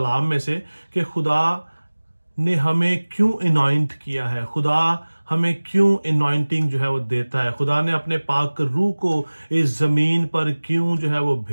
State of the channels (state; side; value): inverted; both; correlation -1.00